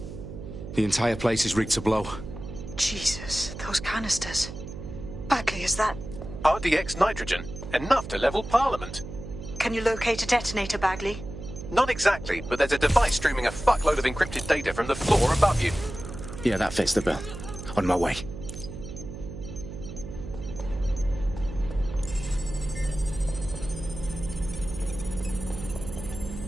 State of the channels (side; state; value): right; noise; hum, 10 dB below the sound